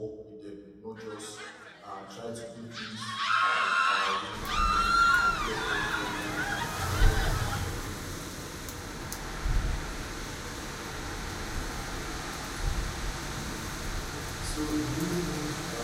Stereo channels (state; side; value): identical; both; correlation 1.00